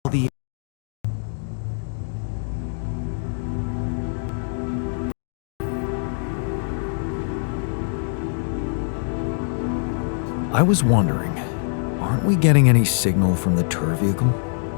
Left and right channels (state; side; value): silent; right; 63 dB below the other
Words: the... I was wondering, aren't we getting any signal from the tour vehicle?